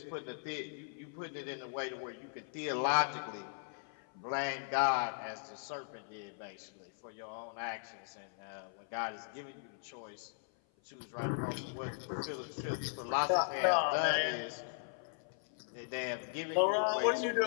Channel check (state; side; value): silent; right; 52 dB below the other